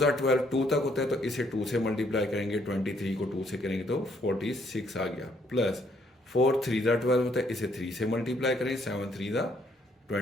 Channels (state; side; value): normal; both; correlation 0.69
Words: 12, 2 तक होता है तो इसे 2 से मल्टीप्लाई करेंगे। 23 को 2 से करेंगे तो 46 आ गया। प्लस 4 3 ज़ा 12 होता है, इसे 3 से मल्टीप्लाई करें। 7 3 ज़ा